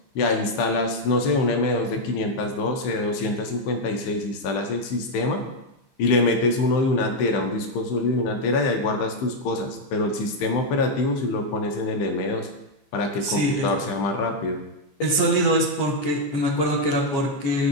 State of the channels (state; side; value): late; right; 15 ms